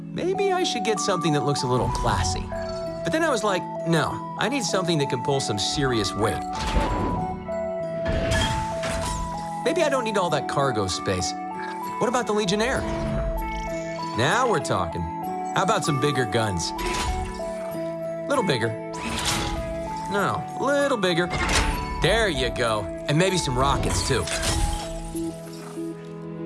maybe I should get something that looks a little classy. But then I was like, no, I need something that can pull some serious weight. Maybe I don't need all that cargo space. What about the Legionnaire? Now we're talking. How about some bigger guns? Little bigger. No, little bigger. There you go. And maybe some rockets, too.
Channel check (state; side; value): identical; both; correlation 1.00